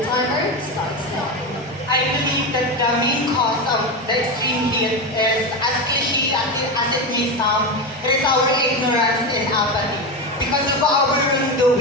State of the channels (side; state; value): both; normal; correlation 0.17